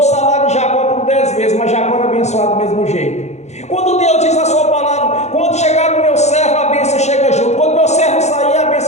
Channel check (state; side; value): late; right; 0.33 ms